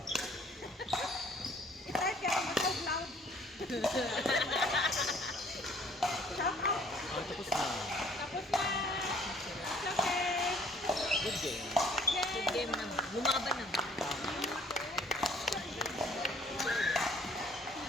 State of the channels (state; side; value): normal; both; correlation 0.57